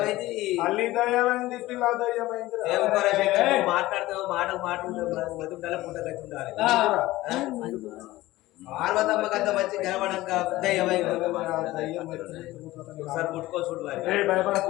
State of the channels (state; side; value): quieter; right; 17.5 dB